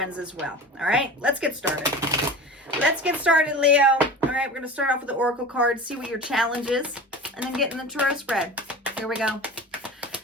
as well. All right, let's get started. Let's get started, Leo. All right, we're going to start off with the Oracle cards, see what your challenge is, and then get in the tarot spread. Here we go.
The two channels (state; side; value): normal; both; correlation 0.35